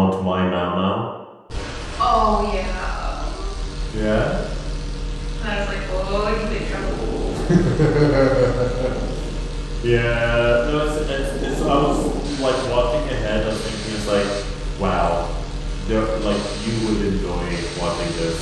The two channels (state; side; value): identical; both; correlation 1.00